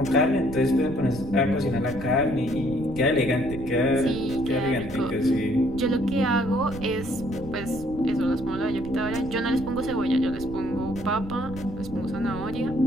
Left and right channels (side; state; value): right; noise; rumble, 12 dB below the sound